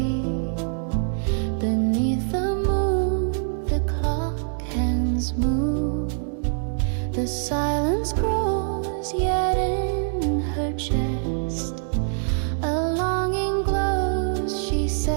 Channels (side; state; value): left; silent; digital silence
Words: beneath the moon. The clock hands move. The silence grows, yet in her chest a longing glows. She